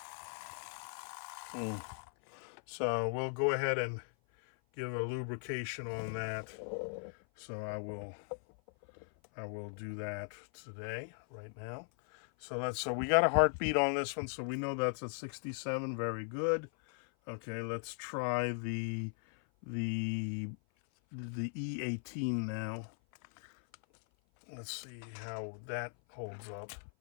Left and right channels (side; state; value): right; silent; 52 dB below the other